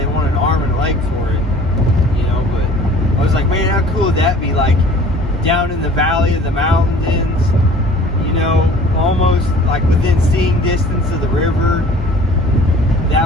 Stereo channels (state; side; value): normal; both; correlation 0.49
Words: wanted an arm and a leg for it. You know, but I was like, man, how cool would that be? Like down in the valley of the mountains, you know, almost like within seeing distance of the river.